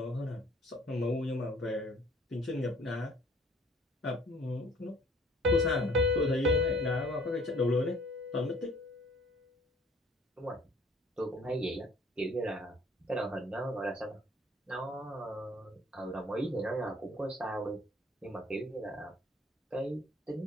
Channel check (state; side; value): normal; both; correlation 0.55